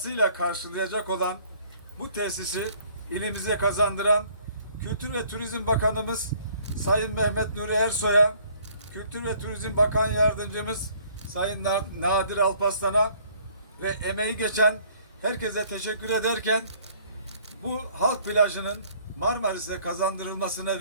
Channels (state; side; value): inverted; both; correlation -0.59